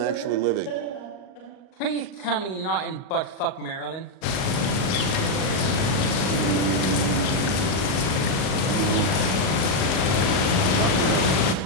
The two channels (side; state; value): right; late; 38 ms